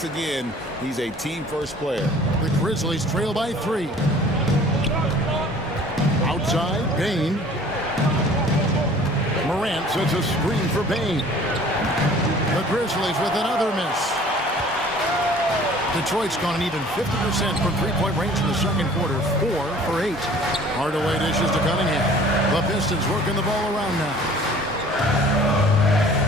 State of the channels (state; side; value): normal; both; correlation 0.50